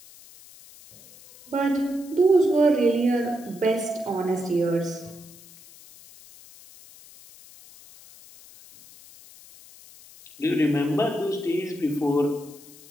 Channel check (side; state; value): left; noise; hiss, 22 dB below the sound